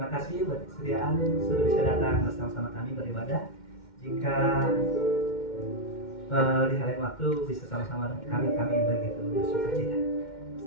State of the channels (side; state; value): right; late; 2.1 ms